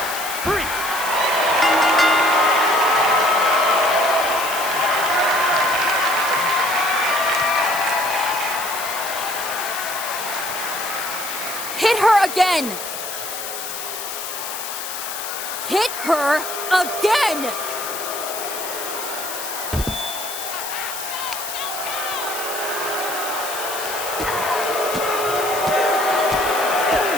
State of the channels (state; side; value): noise; left; hiss, 7 dB below the sound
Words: 3. Hit her again! Hit her again!